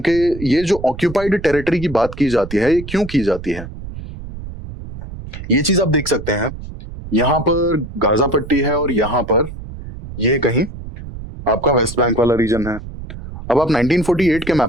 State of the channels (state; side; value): noise; right; rumble, 12 dB below the sound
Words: कि ये जो ऑक्यूपाइड टेरिटरी की बात की जाती है, ये क्यों की जाती है? ये चीज आप देख सकते हैं, यहाँ पर गाजा पट्टी है और यहाँ पर ये कहीं आपका वेस्ट बैंक वाला रीजन है। अब आप 1948 के